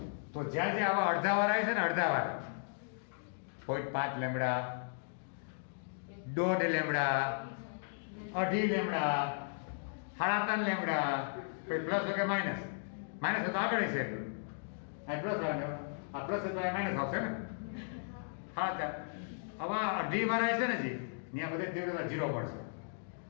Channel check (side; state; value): right; silent; digital silence